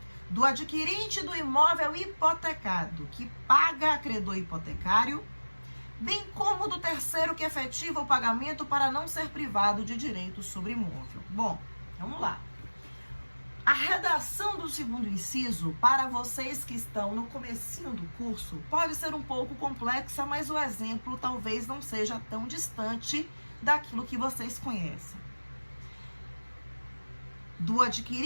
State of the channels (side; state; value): both; inverted; correlation -1.00